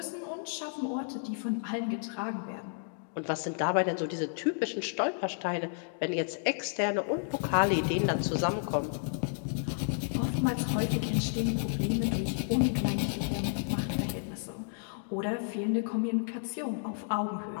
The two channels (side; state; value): right; silent; digital silence